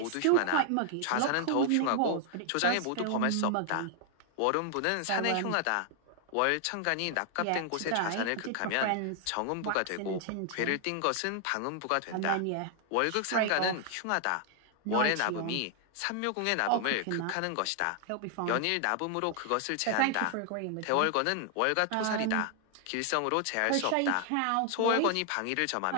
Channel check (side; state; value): both; different; correlation 0.00